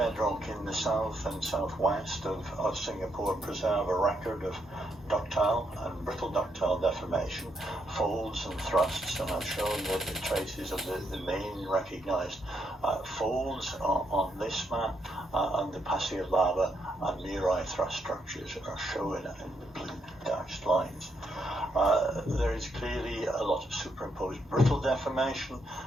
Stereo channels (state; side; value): normal; both; correlation 0.77